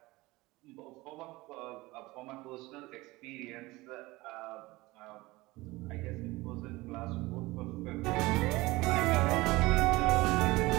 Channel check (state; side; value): quieter; left; 20.8 dB